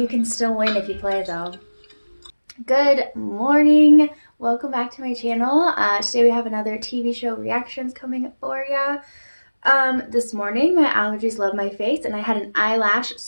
can still win if you play though. Good morning. Welcome back to my channel. Today we have another TV show reactions coming for ya. This morning my allergies love my face and I had an eyelash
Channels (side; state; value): both; inverted; correlation -1.00